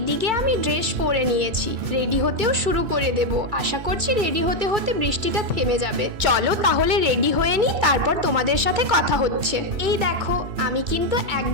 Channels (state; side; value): late; left; 2.6 ms